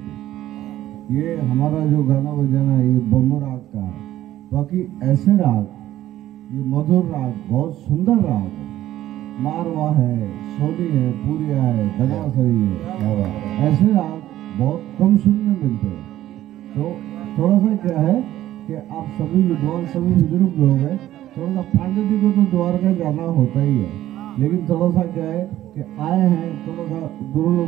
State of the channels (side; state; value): left; quieter; 13.6 dB